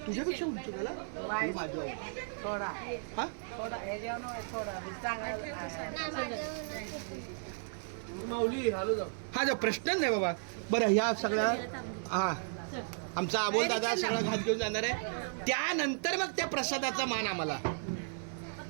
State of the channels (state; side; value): silent; left; 55 dB below the other